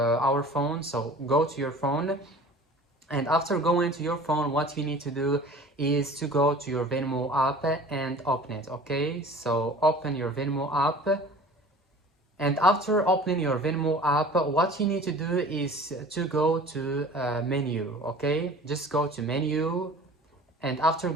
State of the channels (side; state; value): both; normal; correlation 0.44